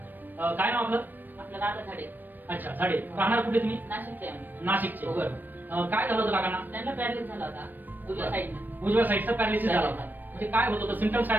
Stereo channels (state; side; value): late; left; 0.090 ms